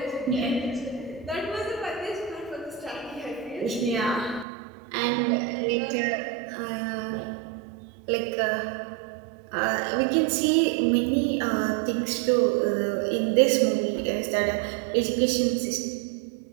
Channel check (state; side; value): drops out; left; at 4.5 s